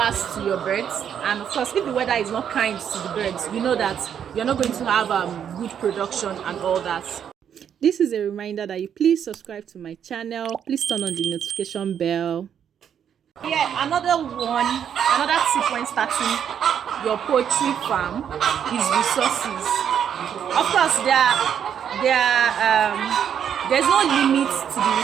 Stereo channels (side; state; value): left; quieter; 8.6 dB